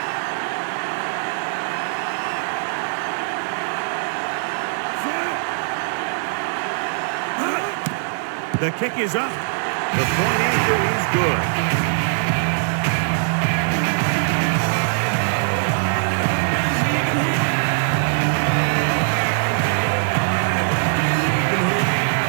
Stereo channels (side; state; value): left; silent; digital silence